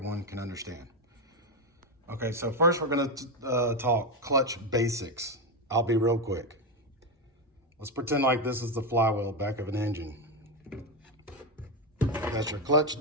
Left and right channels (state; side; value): normal; both; correlation 0.10